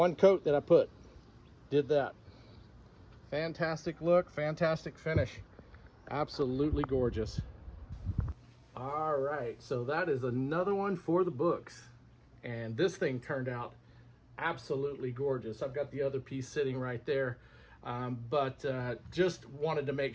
coat that I put did that. Fantastic look, fantastic finish, absolutely gorgeous. All right, so that is another one for the books, and this thing turned out absolutely gorgeous. I've got the other piece sitting right there, but just wanted to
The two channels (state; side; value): identical; both; correlation 1.00